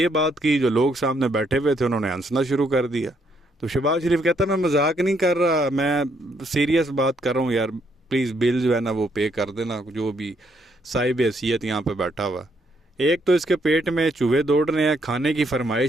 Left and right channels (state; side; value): normal; both; correlation 0.72